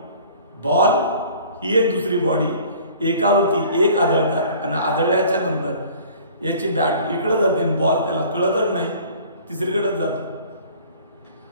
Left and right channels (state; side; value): inverted; both; correlation -0.49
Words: बॉल ही एक दुसरी बॉडी, एकावरती एक आदळतात आणि आदळल्याच्या नंतर याची बॅट इकडे जाते, बॉल त्याला कळतच नाही, तिसरीकडेच जातो.